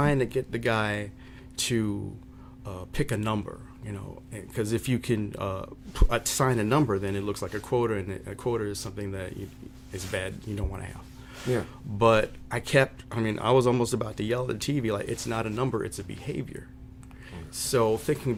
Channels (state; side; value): identical; both; correlation 1.00